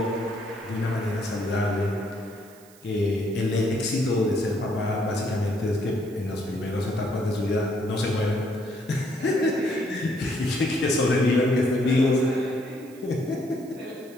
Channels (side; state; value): right; noise; hiss, 25 dB below the sound